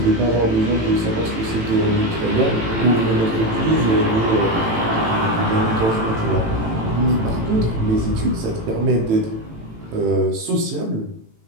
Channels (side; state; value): left; late; 18 ms